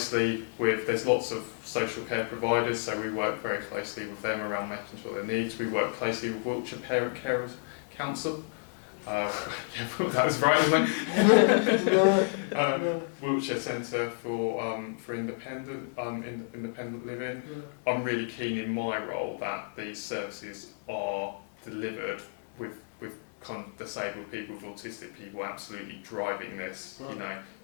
there's lots of social care providers, so we work very closely with them around making sure their needs. We work closely with Wiltshire Parent Carers Council. That was right, wasn't it? Wiltshire Centre for Independent Living. I'm really keen in my role that these services are delivered with kind of disabled people, with autistic people absolutely driving this.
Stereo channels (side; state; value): right; silent; 57 dB below the other